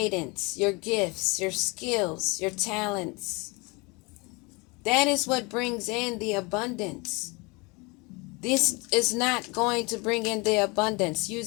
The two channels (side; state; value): right; quieter; 27.5 dB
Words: your gifts, your skills, your talents. That is what brings in the abundance. This is not going to bring in the abundance